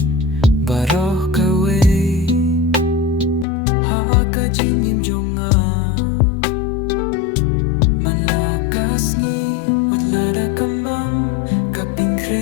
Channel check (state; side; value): drops out; right; at 3.5 s